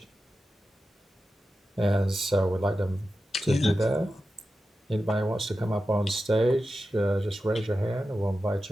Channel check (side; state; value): both; normal; correlation 0.92